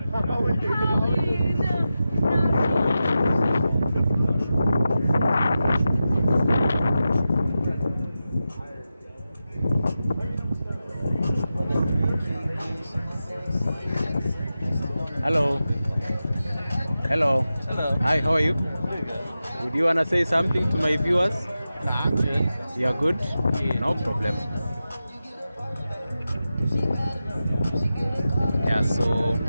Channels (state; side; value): inverted; both; correlation -0.92